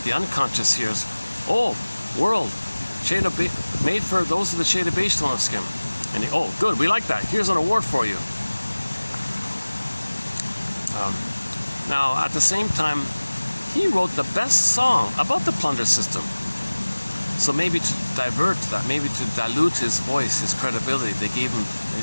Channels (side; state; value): both; inverted; correlation -1.00